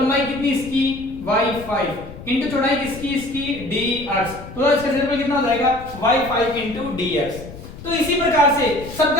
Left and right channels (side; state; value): left; noise; rumble, 15 dB below the sound